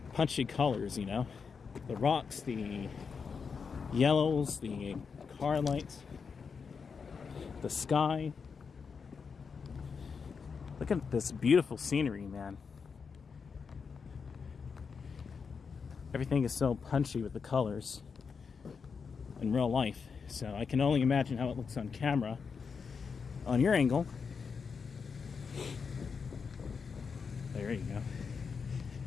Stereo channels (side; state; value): right; quieter; 5.7 dB